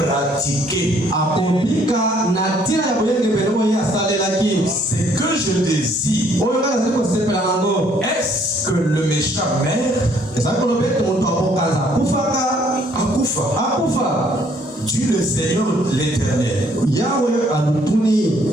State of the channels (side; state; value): both; normal; correlation 0.64